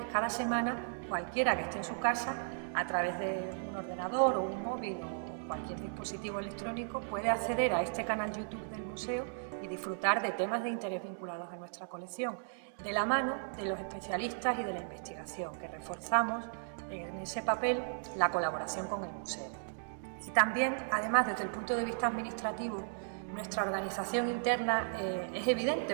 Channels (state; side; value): silent; left; digital silence